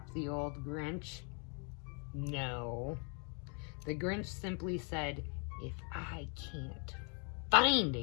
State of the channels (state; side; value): quieter; right; 38.1 dB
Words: the old Grinch? No. The Grinch simply said, if I can't find